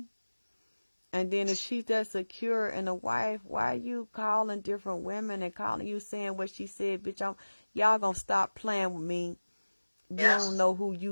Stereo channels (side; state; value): both; inverted; correlation -1.00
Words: And then if she's that secure and a wife, why are you calling different women and calling you saying what she said, bitch? Y'all gonna stop playing with me. You don't know who